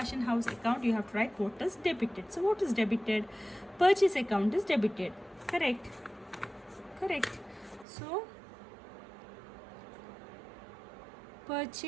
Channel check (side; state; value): left; drops out; at 7.9 s